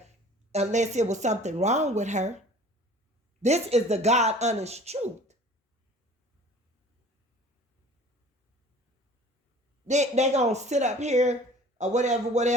unless it was something wrong with her. This is the God honest truth. They're going to sit up here or whatever.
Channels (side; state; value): both; normal; correlation 0.47